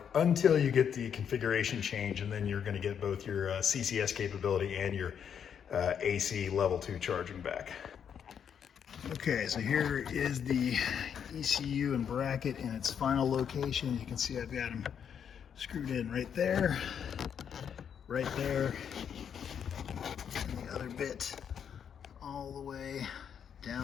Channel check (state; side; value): quieter; right; 8.0 dB